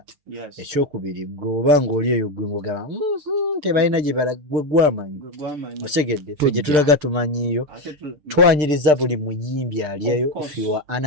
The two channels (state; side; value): late; left; 6.7 ms